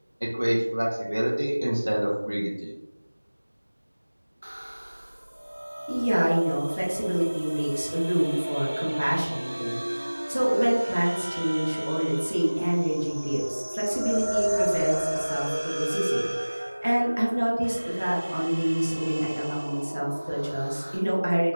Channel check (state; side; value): inverted; both; correlation -1.00